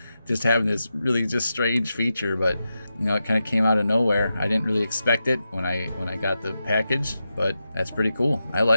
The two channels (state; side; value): inverted; both; correlation -0.89